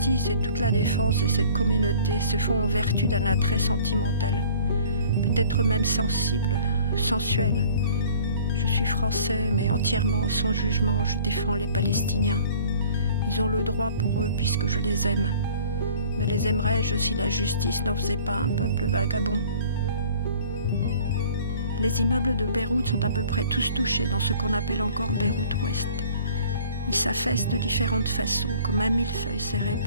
et toute la défense de cette communauté se font en vertu d'un attrait sentimental, peut-être même sensible, sensuel. Je suis français, mais entièrement sans jugement, je défends les Palestiniens. Ils ont le droit pour eux puisque je les aime. Mais les aimerais-je si la justice n'en faisait pas un peuple vagabond ? Les immeubles de Beyrouth sont à peu près tous touchés dans ce qu'on appelle encore Beyrouth-Ouest. Ils s'affaissent de différentes façons, comme un millefeuille serré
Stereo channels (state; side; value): inverted; both; correlation -0.50